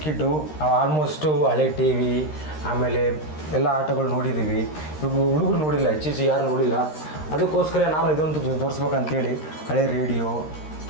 ಕಿಡ್ಡು, ನಾವು ಆಲ್ಮೋಸ್ಟು ಹಳೆ ಟಿ ವಿ ಆಮೇಲೆ ಎಲ್ಲ ಆಟಗಳು ನೋಡಿದ್ದೀವಿ. ಇವಾಗ ಹುಡುಗರು ನೋಡಿಲ್ಲ, ಹೆಚ್ಚು ಯಾರು ನೋಡಿಲ್ಲ. ಅದಕ್ಕೋಸ್ಕರ ನಾನು ಇದೊಂದು ತೋರಿಸ್ಬೇಕಂತೇಳಿ ಹಳೆ ರೇಡಿಯೋ.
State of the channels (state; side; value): late; right; 13 ms